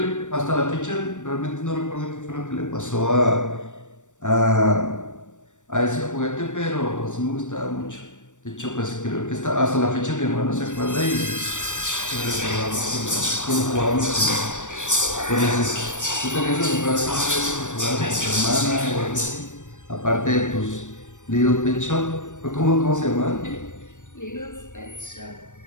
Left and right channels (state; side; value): late; right; 0.85 ms